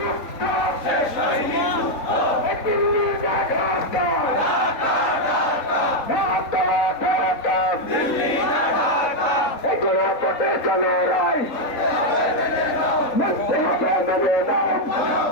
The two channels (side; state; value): right; late; 3.8 ms